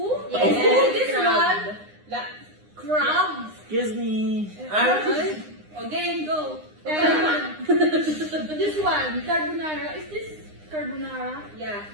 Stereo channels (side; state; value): left; late; 9.8 ms